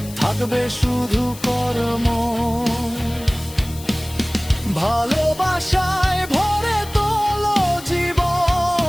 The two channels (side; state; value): left; noise; hiss, 16 dB below the sound